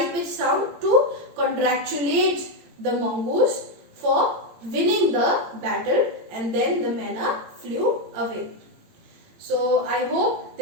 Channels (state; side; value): late; left; 17 ms